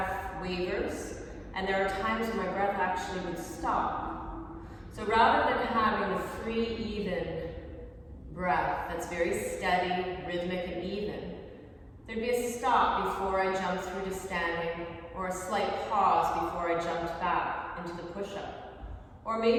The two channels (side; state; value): both; identical; correlation 1.00